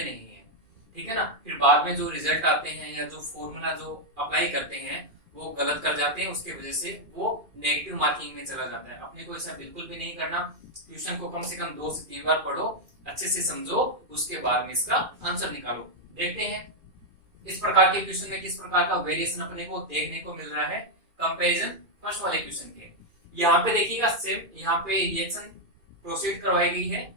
नहीं है, ठीक है ना। फिर बाद में जो रिजल्ट आते हैं या जो फॉर्मूला जो अप्लाई करते हैं वो गलत कर जाते हैं, उसके वजह से वो नेगेटिव मार्किंग में चला जाता है। अपने को ऐसा बिल्कुल भी नहीं करना। क्वेश्चन को कम से कम 2 से 3 बार पढ़ो, अच्छे से समझो, उसके बाद में इसका आंसर निकालो। देखते हैं इस प्रकार के क्वेश्चन में किस प्रकार का वेरिएशन अपने को देखने को मिल रहा है कंपैरिजन फर्स्ट वाले क्वेश्चन के। यहाँ पे देखिएगा सेम यहाँ पे रिएक्शन प्रोसीड करवाई गई है।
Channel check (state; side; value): late; left; 2.4 ms